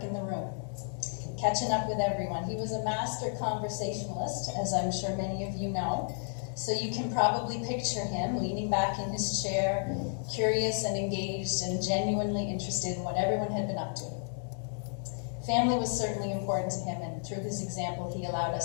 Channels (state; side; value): silent; right; 56 dB below the other